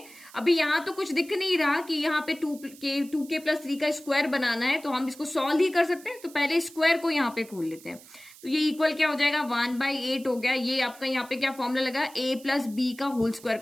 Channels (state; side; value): noise; right; hiss, 21 dB below the sound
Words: अभी यहाँ तो कुछ दिख नहीं रहा कि यहाँ पे 2k+3 का स्क्वायर बनाना है, तो हम इसको सॉल्व ही कर सकते हैं। तो पहले स्क्वायर को यहाँ पे खोल लेते हैं। तो ये इक्वल क्या हो जाएगा, 1/8 हो गया। ये आपका यहाँ पे क्या फॉर्मूला लगा, a+b का होल स्क्वायर